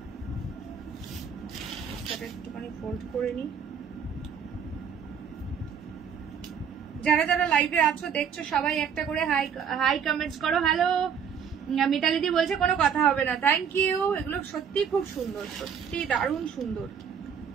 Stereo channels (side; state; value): left; quieter; 7.3 dB